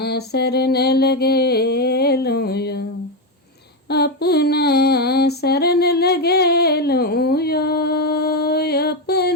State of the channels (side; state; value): both; normal; correlation 0.09